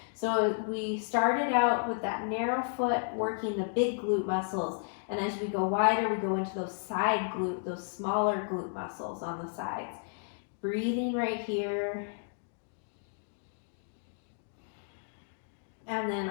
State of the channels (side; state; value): right; silent; digital silence